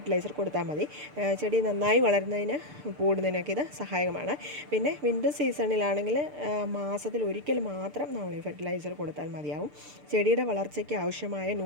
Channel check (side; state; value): left; late; 6.8 ms